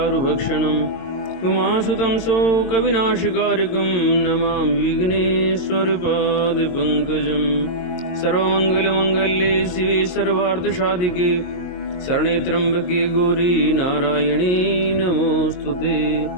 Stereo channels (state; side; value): late; right; 22 ms